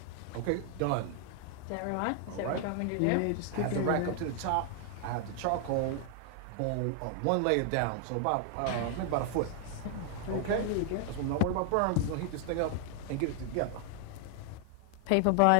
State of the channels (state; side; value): different; both; correlation 0.00